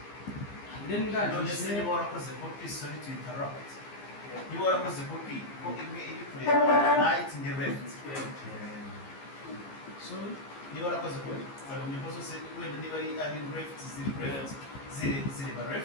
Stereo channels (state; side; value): late; right; 15 ms